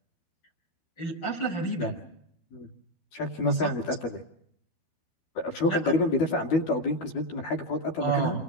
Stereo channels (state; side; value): late; right; 12 ms